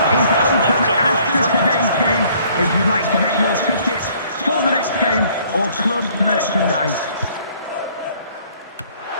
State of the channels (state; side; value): inverted; both; correlation -0.59